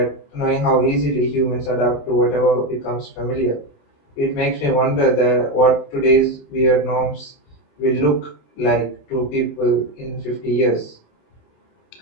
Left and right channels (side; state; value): right; late; 28 ms